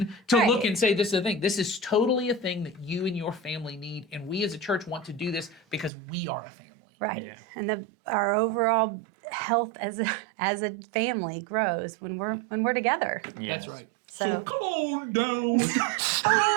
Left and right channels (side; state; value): left; drops out; at 5.9 s